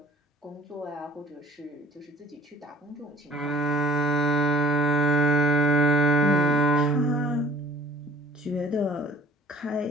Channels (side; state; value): both; normal; correlation 0.50